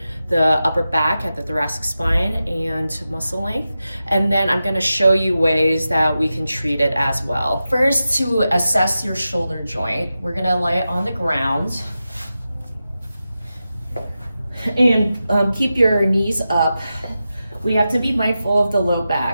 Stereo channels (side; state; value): both; inverted; correlation -0.92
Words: the upper back at the thoracic spine, and muscle length. And then I'm gonna show you ways that we can treat it as well. First, to assess your shoulder joint, we're gonna lay it on the ground and keep your knees up. We have to be mindful of the low